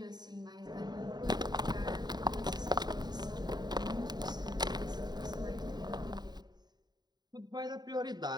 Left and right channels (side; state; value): left; late; 0.20 ms